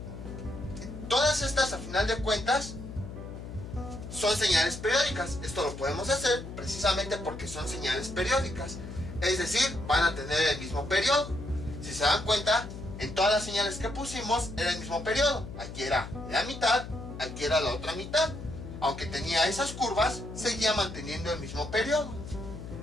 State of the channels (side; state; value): left; noise; hum, 10 dB below the sound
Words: todas estas a final de cuentas son señales periódicas. Esto lo podemos hacer precisamente porque son señales periódicas, es decir, van a tener el mismo periodo. Si se dan cuenta, en todas las señales que pusimos era el mismo periodo. Aquí era la mitad, aquí era la otra mitad. Aunque tenía esas curvas, seguía manteniendo el mismo periodo.